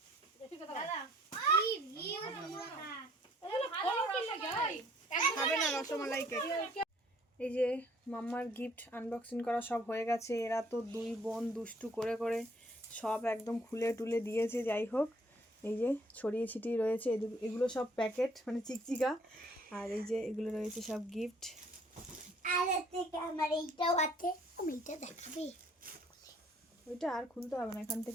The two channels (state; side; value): normal; both; correlation 0.61